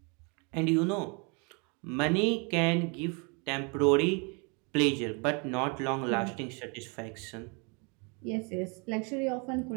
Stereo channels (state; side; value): quieter; left; 33.2 dB